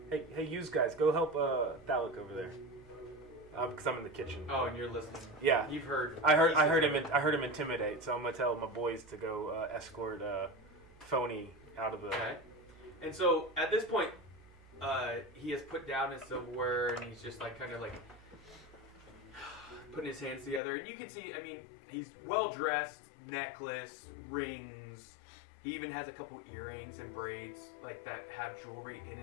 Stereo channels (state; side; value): drops out; right; at 20.6 s